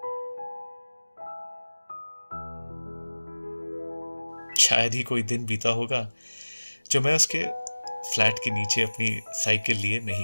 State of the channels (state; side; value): inverted; both; correlation -1.00